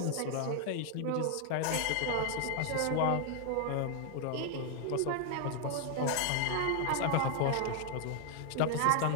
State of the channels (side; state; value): both; different; correlation 0.00